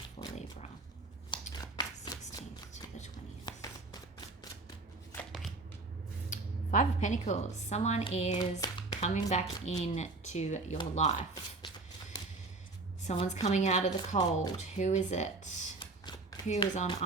for Libra. 16th to the 20th. Five of Pentacles. Someone is coming back into your life. Someone's coming out of the cold. Who is it? Who is on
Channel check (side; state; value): left; quieter; 3.4 dB